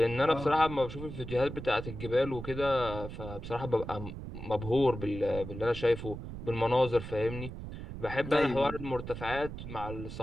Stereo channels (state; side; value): noise; right; rumble, 9 dB below the sound